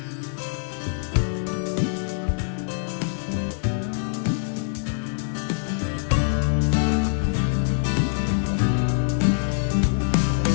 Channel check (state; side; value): silent; right; 62 dB below the other